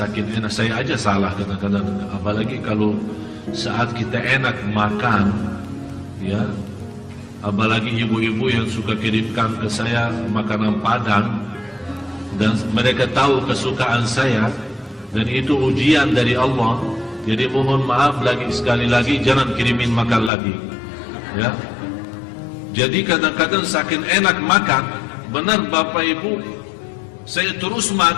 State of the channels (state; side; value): drops out; right; at 20.3 s